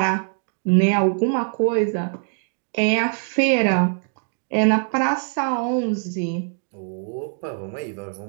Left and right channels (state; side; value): silent; left; 64 dB below the other